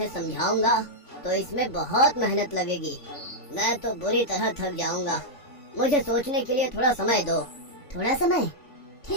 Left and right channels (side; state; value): right; late; 3.5 ms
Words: समझाऊंगा तो इसमें बहुत मेहनत लगेगी। मैं तो बुरी तरह थक जाऊंगा। मुझे सोचने के लिए थोड़ा समय दो। थोड़ा समय?